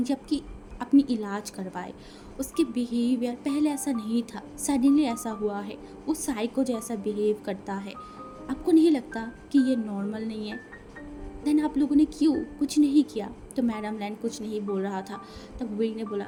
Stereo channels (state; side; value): identical; both; correlation 1.00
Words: जी अपनी इलाज करवाए। उसके बिहेवियर पहले ऐसा नहीं था, सडनली ऐसा हुआ है, वो साइको जैसा बिहेव करता है। आपको नहीं लगता कि ये नॉर्मल नहीं है? देन आप लोगों ने क्यों कुछ नहीं किया? तो मैडम लैंड कुछ नहीं बोल रहा था। तब वी ने बोला